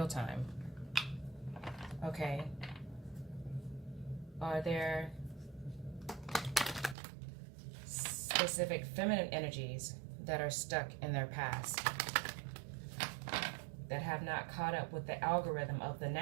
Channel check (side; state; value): left; drops out; at 7.0 s